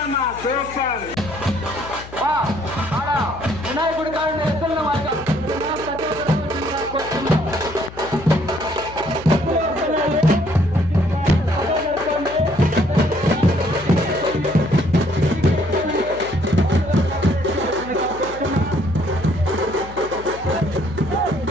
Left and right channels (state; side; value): noise; left; hum, 16 dB below the sound